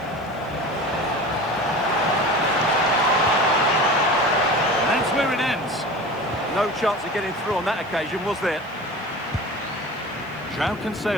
chance. No chance of getting through on that occasion, was there? João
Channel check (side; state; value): left; noise; hiss, 30 dB below the sound